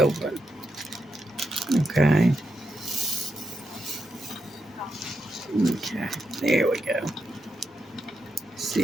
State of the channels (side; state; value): both; normal; correlation 0.84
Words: Okay. Okay. There we go.